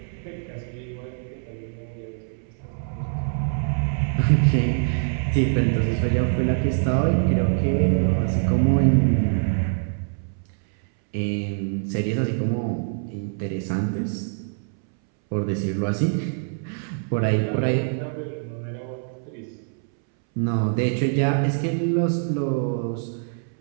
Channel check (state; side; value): silent; left; 62 dB below the other